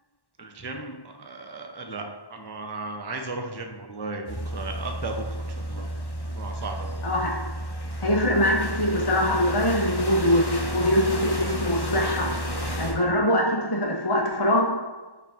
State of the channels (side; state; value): right; late; 1.1 ms